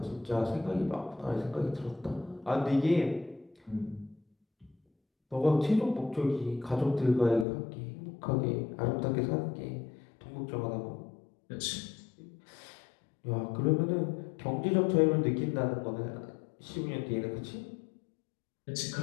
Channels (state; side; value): drops out; right; at 7.5 s